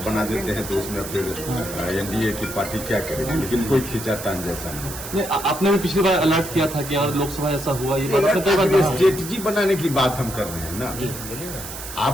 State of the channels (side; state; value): right; noise; hiss, 10 dB below the sound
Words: बना देते हैं तो उसमें फिर एनडीए की पार्टी क्या करेगी, लेकिन कोई खींचातान जैसा नहीं। आपने भी पिछली बार अलर्ट किया था कि यार लोकसभा ऐसा हुआ, ये बात स्ट्रेटजी बनाने की बात हम कर रहे हैं ना।